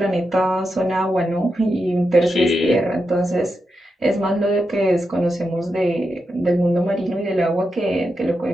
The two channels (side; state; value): both; normal; correlation 0.87